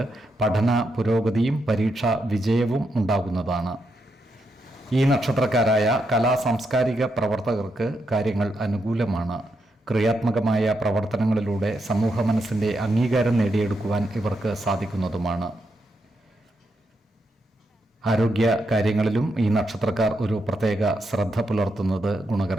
പഠന പുരോഗതിയും പരീക്ഷാ വിജയവും ഉണ്ടാകുന്നതാണ്. ഈ നക്ഷത്രക്കാരായ കലാ സാംസ്കാരിക പ്രവർത്തകർക്ക് കാര്യങ്ങൾ അനുകൂലമാണ്. ക്രിയാത്മകമായ പ്രവർത്തനങ്ങളിലൂടെ സമൂഹ മനസ്സിൻ്റെ അംഗീകാരം നേടിയെടുക്കുവാൻ ഇവർക്ക് സാധിക്കുന്നതുമാണ്. ആരോഗ്യ കാര്യങ്ങളിലും ഈ നക്ഷത്രക്കാർ ഒരു പ്രത്യേക ശ്രദ്ധ പുലർത്തുന്നത്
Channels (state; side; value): normal; both; correlation 0.82